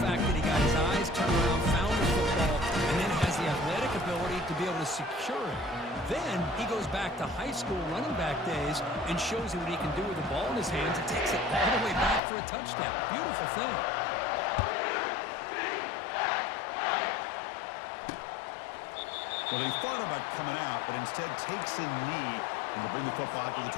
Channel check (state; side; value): drops out; right; at 12.2 s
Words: fact that he got his eyes turned around, found the football, and then has the athletic ability to be able to secure it. Then he goes back to high school running back days and shows you what he can do with the ball in his hands and takes it all the way back for a touchdown. Beautiful thing. Well, he thought about coming out, but instead takes a knee and will bring the football to the